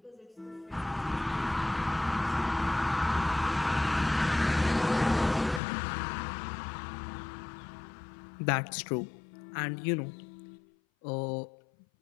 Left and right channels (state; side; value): drops out; right; at 5.6 s